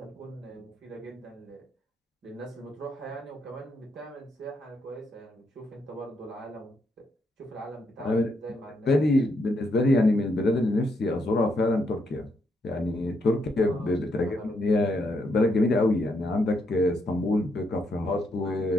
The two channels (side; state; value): both; normal; correlation 0.77